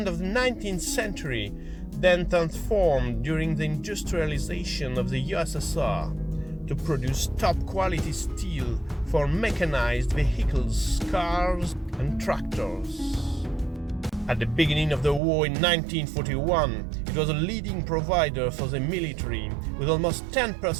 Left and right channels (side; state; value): left; drops out; at 15.2 s